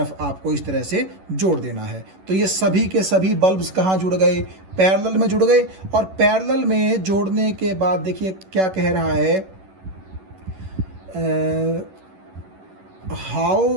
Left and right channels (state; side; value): late; left; 11 ms